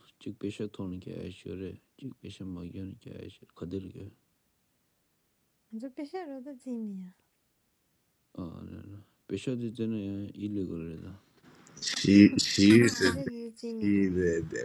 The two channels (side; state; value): both; identical; correlation 1.00